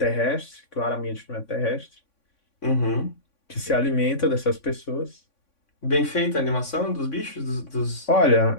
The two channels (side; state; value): right; late; 3.5 ms